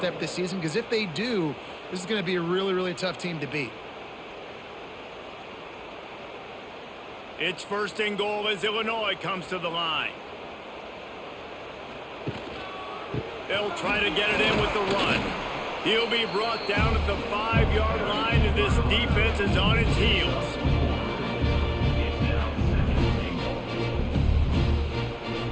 this season, because if they do, this is going to be a really, really tough team to beat. It's 1st and goal as Illinois comes to the line. They'll try to get it in with the run. He'll be brought down at the 5-yard line, and this defense is on its heels.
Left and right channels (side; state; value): both; identical; correlation 1.00